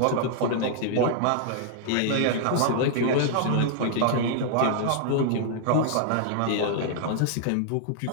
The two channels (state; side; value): different; both; correlation -0.01